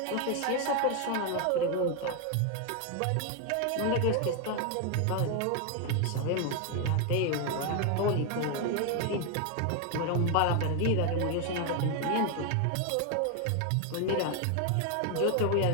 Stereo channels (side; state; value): both; different; correlation 0.01